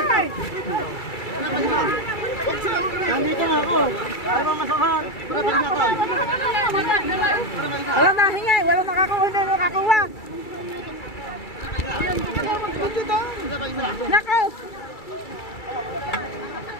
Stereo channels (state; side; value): late; right; 2.3 ms